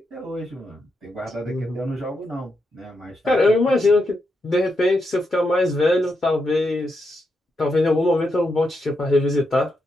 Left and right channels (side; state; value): both; normal; correlation 0.83